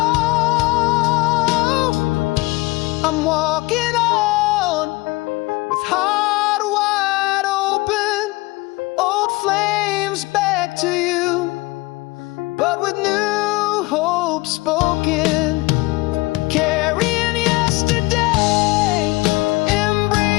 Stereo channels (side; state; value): right; quieter; 22.1 dB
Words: I'm walking on with heart wide open, old flames back to you, but with new hope spoken. Carrying yesterday,